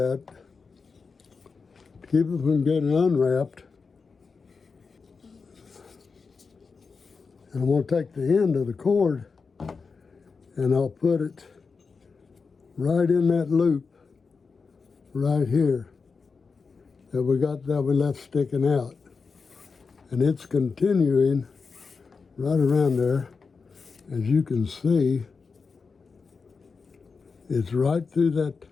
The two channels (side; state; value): right; quieter; 4.9 dB